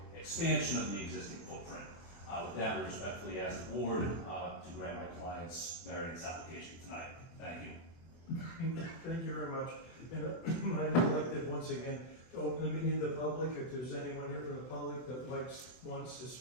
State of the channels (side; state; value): right; late; 24 ms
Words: expansion of the existing footprint. With that, we respectfully ask the board to grant my client's variance application tonight. Thank you. Thank you very much. And I neglected once again to open the meeting to the public. If there's anyone here from the public that wants to